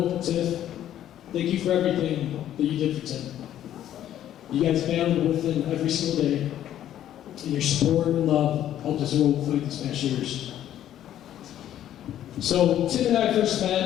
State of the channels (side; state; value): right; quieter; 11.6 dB